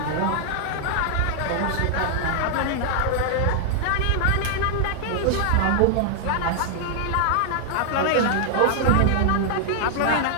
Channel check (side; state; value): both; different; correlation -0.01